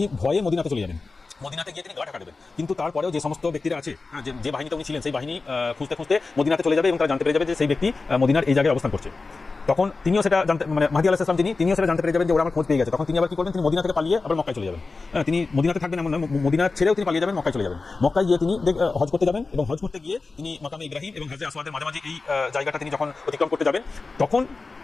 ভয়ে মদিনাতে চলে যাবেন, মদিনাতে গিয়ে তিনি গা ঢাকা দেবেন। কিন্তু তারপরেও যে সমস্ত ব্যক্তিরা আছে, যে বাহিনীতে উনি ছিলেন, সেই বাহিনী খুঁজতে মদিনাতে চলে যাবে এবং তারা জানতে পেরে যাবে যে সেই ব্যক্তি মদিনার এই জায়গায় অবস্থান করছে। তখন তিনিও সেটা জানতে, মানে মাহদী আলাইহিস সালাম তিনিও সেটা জানতে পেরে যাবেন যে ওরা আমার খোঁজ পেয়ে গেছে। তখন তিনি আবার কি করবেন? তিনি মদিনা থেকে পালিয়ে আবার মক্কায় চলে যাবেন। তিনি মদিনাতে থাকবেন এমন নয়, মদিনা ছেড়েও তিনি পালিয়ে যাবেন, মক্কায় চলে যাবেন। মক্কায় গিয়ে তিনি হজ করতে যাবেন এবং হজ করতে গিয়ে তিনি মাকামে ইব্রাহিম এবং হাজরে আসওয়াদের মাঝামাঝি এই জায়গাটা তিনি যখন অতিক্রম করতে যাবেন, তখন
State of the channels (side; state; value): right; quieter; 3.9 dB